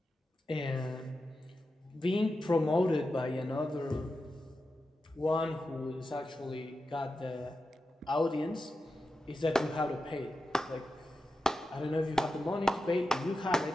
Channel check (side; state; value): both; normal; correlation 0.90